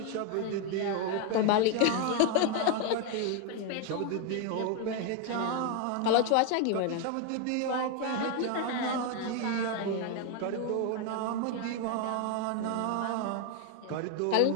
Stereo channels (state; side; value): different; both; correlation 0.01